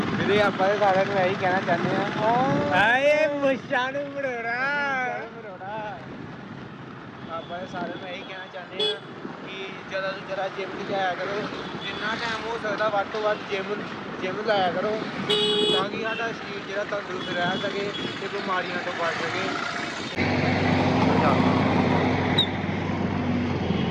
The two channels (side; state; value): both; identical; correlation 1.00